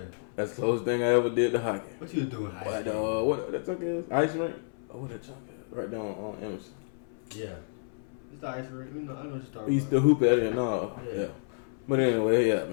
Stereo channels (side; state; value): right; silent; 58 dB below the other